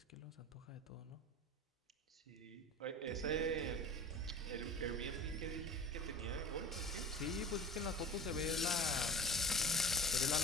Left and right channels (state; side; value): normal; both; correlation 0.36